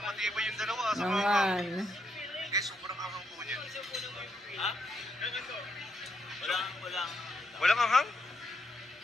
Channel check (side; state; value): both; normal; correlation 0.78